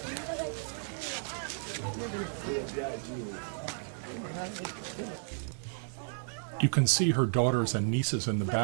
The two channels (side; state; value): left; silent; 56 dB below the other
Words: You can see her daughters and nieces in the